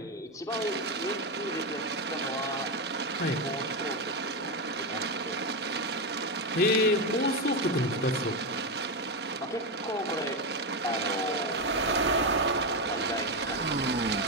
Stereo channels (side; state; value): both; normal; correlation 0.09